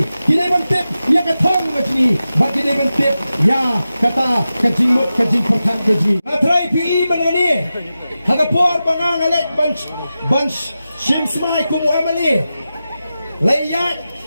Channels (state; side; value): inverted; both; correlation -0.93